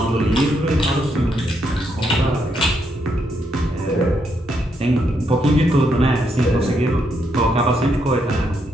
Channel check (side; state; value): both; normal; correlation 0.77